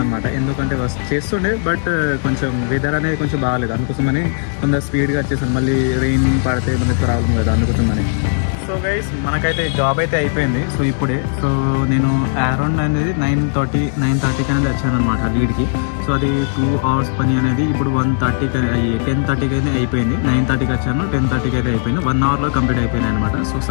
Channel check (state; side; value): silent; right; digital silence